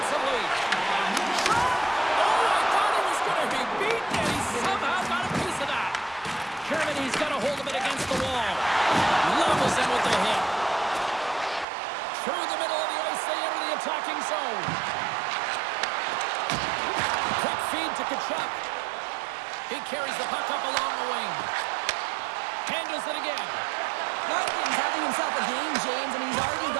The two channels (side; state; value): left; drops out; at 11.7 s